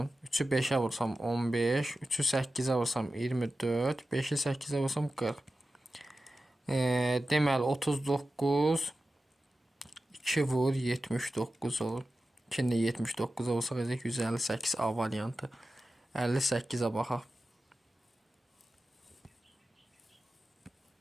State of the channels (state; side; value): normal; both; correlation 0.93